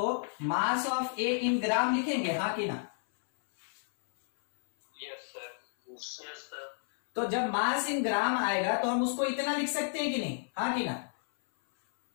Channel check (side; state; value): right; silent; 57 dB below the other